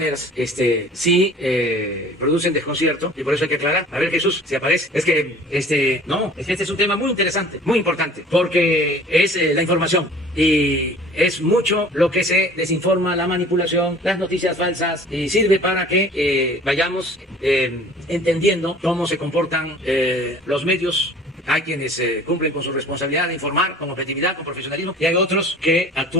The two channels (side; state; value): both; normal; correlation 0.48